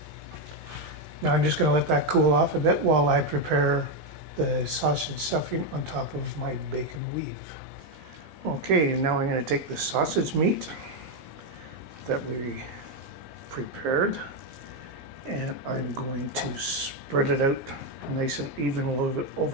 Now I'm just going to let that cool off a bit while I prepare the sausage stuffing on top of my bacon weave. Okay, now I'm going to take the sausage meat that we prepared and I'm going to spread it out nice and even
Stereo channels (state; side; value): late; left; 20 ms